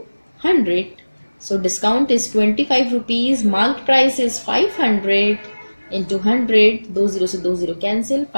100. So discount is 25 rupees, marked price is 500 into 100, 2 0 से 2 0 cancel,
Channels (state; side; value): inverted; both; correlation -1.00